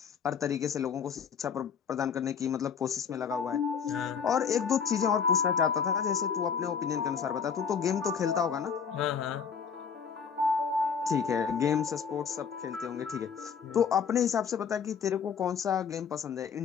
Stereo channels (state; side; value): quieter; right; 6.7 dB